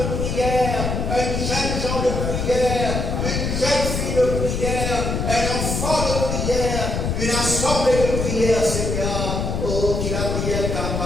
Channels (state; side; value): noise; left; rumble, 1 dB below the sound